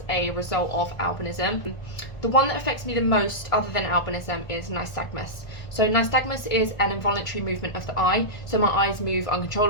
a result of albinism. The one that affects me the most, other than albinism, is nystagmus. So nystagmus is an involuntary movement of the eye. So my eyes move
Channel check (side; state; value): right; late; 1.4 ms